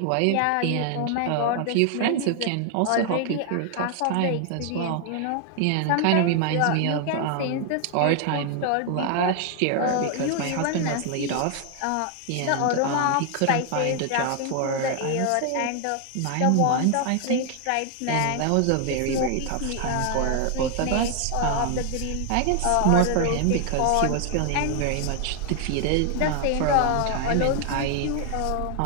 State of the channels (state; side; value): different; both; correlation 0.00